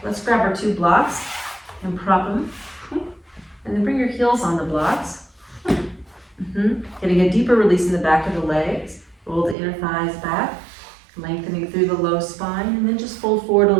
let's grab our two blocks and prop them. And then bring your heels on the blocks. Getting a deeper release in the back of the legs. Roll the inner thighs back, lengthening through the low spine, and then just fold forward a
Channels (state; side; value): drops out; left; at 9.6 s